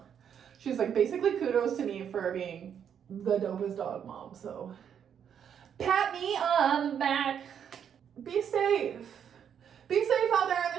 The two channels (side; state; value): left; quieter; 8.4 dB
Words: she was like, basically kudos to me for being the dopest dog mom. So pat me on the back. Be safe. Be safe out there in